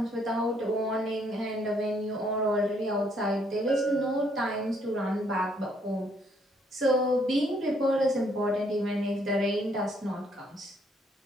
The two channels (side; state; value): both; normal; correlation 0.68